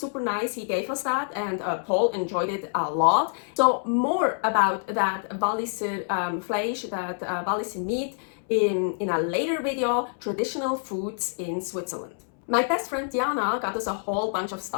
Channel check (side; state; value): right; silent; 61 dB below the other